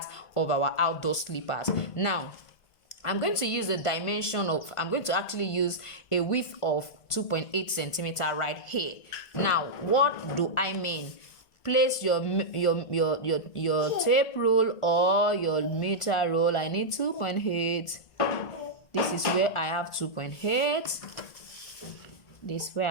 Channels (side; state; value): right; late; 1.5 ms